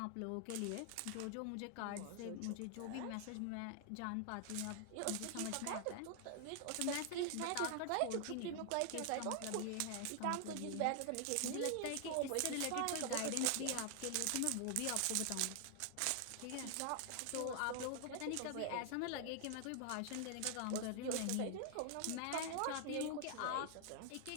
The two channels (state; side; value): different; both; correlation 0.00